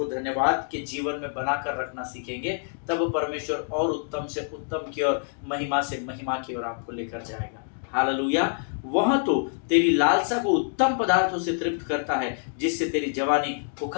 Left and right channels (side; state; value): right; silent; digital silence